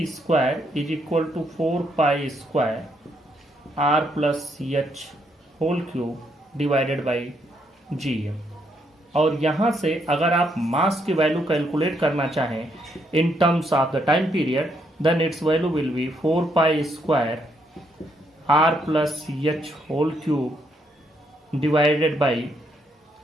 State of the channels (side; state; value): both; normal; correlation 0.74